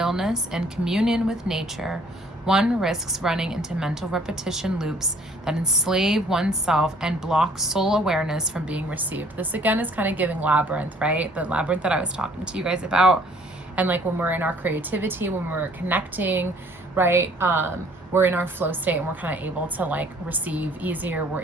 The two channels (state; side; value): normal; both; correlation 0.58